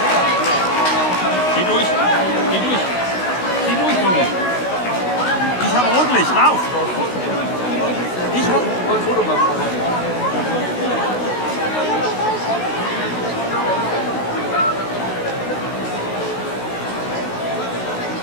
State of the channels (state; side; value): late; right; 16 ms